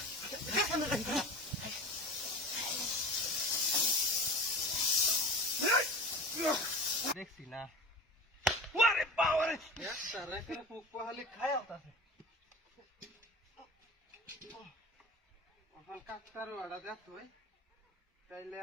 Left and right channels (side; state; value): both; normal; correlation 0.34